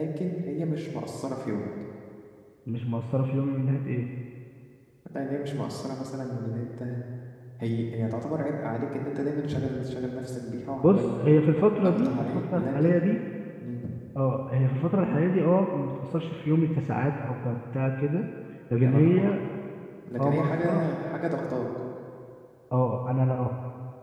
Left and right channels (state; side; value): identical; both; correlation 1.00